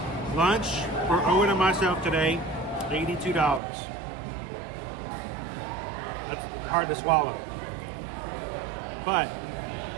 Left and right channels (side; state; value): left; drops out; at 3.6 s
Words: Lunch for Owen and myself today, $82. That's hard to swallow. But,